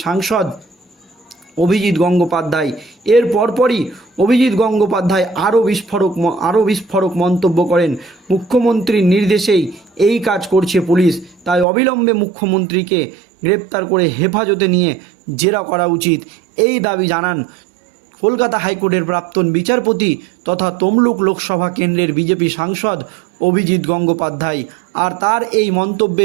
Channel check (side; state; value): left; drops out; at 11.7 s